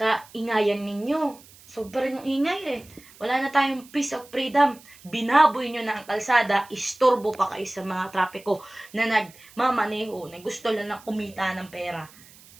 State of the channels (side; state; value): right; noise; hiss, 23 dB below the sound